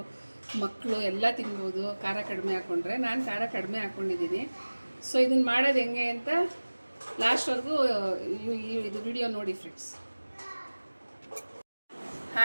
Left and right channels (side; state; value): both; inverted; correlation -1.00